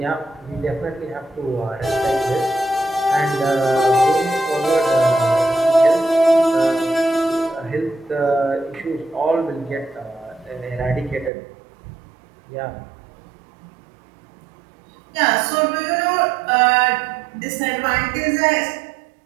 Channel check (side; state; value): left; drops out; at 11.3 s